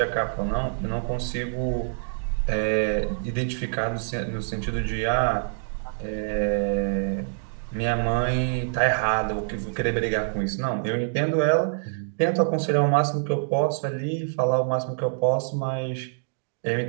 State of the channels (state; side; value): silent; left; digital silence